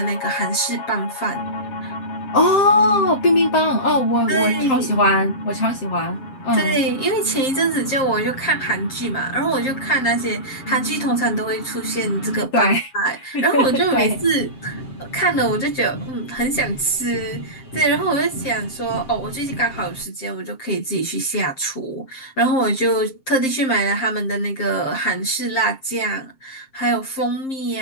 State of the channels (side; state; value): right; late; 7.6 ms